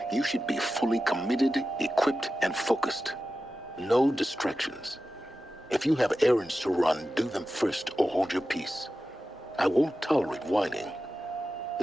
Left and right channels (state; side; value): normal; both; correlation 0.93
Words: you should be fully committed, equipped, and focused. No distractions. If you have errands to run, do them first or hold your peace. I won't tolerate whining.